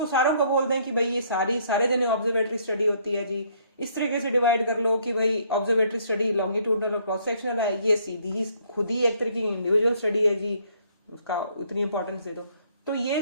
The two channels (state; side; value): inverted; both; correlation -0.65